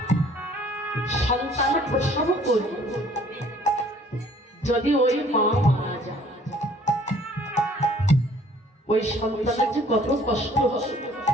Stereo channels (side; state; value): both; normal; correlation 0.56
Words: সন্তানের প্রসব করে যদি ওই মা মারা যায়, ওই সন্তানের যে কত কষ্ট হয়